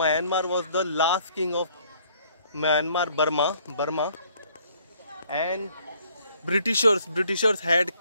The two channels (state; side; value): inverted; both; correlation -0.62